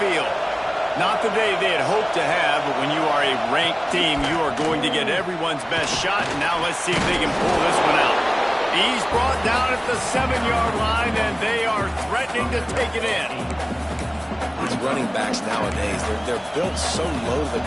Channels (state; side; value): identical; both; correlation 1.00